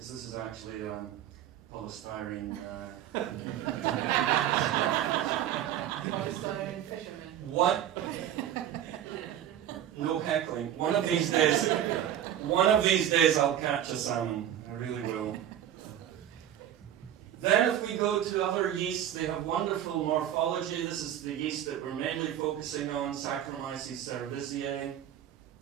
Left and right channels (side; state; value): left; quieter; 10.9 dB